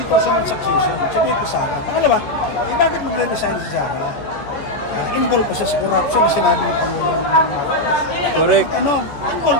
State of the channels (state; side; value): late; right; 14 ms